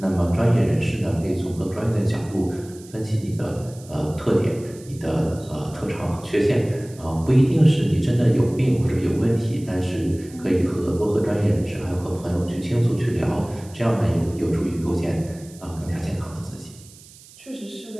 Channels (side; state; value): right; noise; hiss, 22 dB below the sound